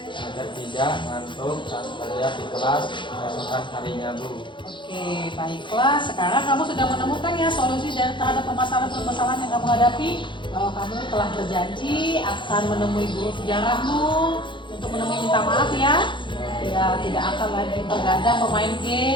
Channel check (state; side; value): late; right; 0.23 ms